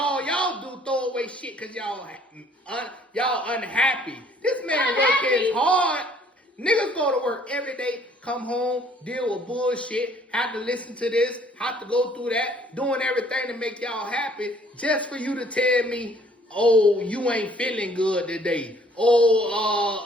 y'all do throw away shit cause y'all unhappy. This man working hard. Niggas go to work every day, come home, deal with bullshit, have to listen to this, have to go through that, doing everything to make y'all happy, just for you to tell me, oh, you ain't feeling good today.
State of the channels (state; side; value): normal; both; correlation 0.59